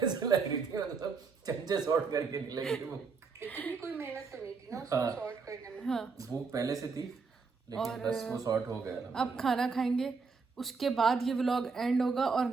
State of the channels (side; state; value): left; quieter; 4.9 dB